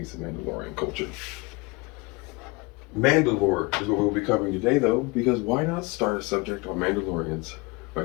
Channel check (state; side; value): quieter; right; 25.6 dB